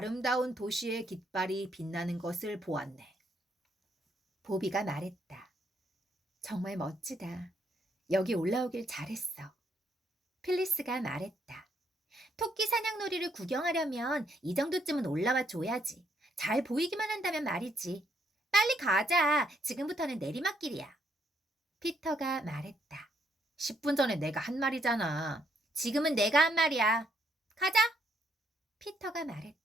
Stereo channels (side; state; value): both; normal; correlation 0.73